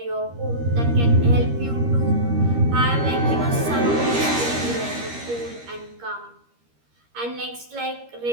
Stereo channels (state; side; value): late; left; 13 ms